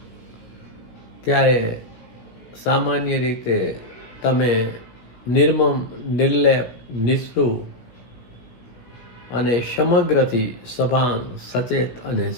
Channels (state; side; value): late; right; 16 ms